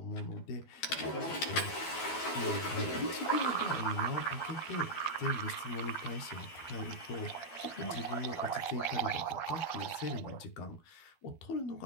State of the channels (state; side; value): late; right; 12 ms